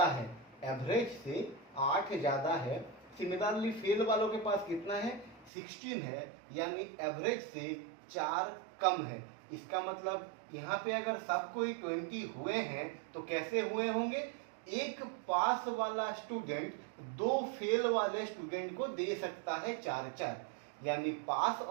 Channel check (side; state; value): left; drops out; at 5.5 s